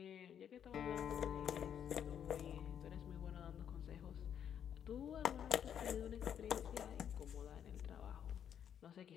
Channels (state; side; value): quieter; right; 8.9 dB